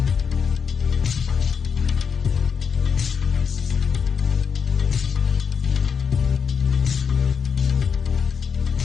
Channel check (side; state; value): right; quieter; 6.4 dB